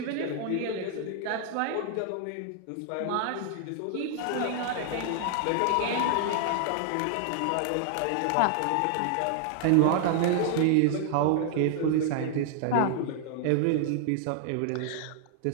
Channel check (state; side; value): different; both; correlation 0.00